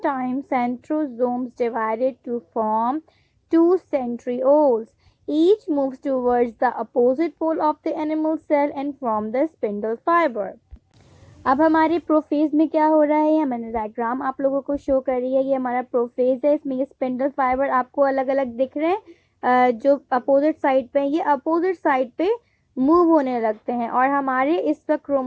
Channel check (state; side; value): identical; both; correlation 1.00